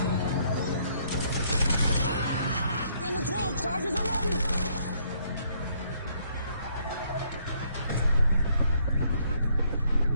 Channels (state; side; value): inverted; both; correlation -0.68